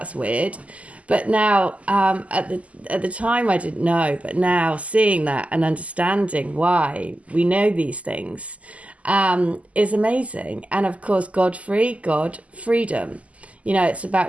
weird. But now, at the time, I didn't know. But now seeing that and understanding why we know these things is amazing. And of course, Godfrey, God, freedom. You know, it's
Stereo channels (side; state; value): left; late; 0.068 ms